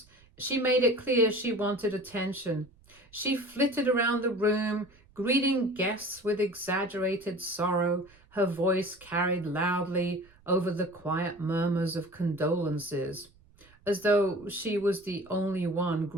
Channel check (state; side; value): noise; right; rumble, 28 dB below the sound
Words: she made it clear she wanted attention. She flitted around the room, greeting guests with exaggerated sorrow. Her voice carried loudly over the quiet murmurs of condolences, as though she was the only one